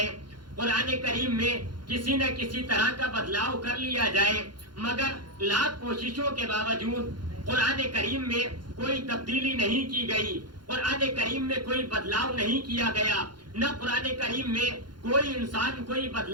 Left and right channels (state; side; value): late; left; 0.71 ms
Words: قرآن کریم میں کسی نہ کسی طرح کا بدلاؤ کر لیا جائے، مگر لاکھ کوششوں کے باوجود قرآن کریم میں کوئی تبدیلی نہیں کی گئی، قرآن کریم میں کوئی بدلاؤ نہیں کیا گیا، نہ قرآن کریم میں کوئی انسان کوئی